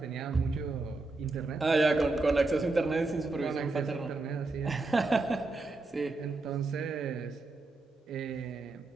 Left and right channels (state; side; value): quieter; left; 3.3 dB